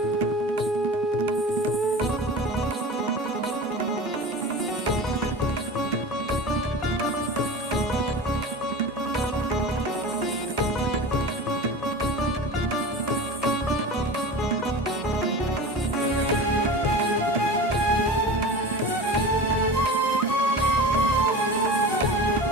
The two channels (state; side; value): normal; both; correlation 0.32